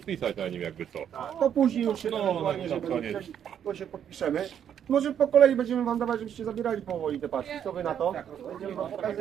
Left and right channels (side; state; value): left; quieter; 9.1 dB